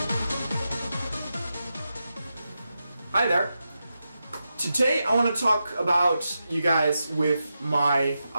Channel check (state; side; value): inverted; both; correlation -0.89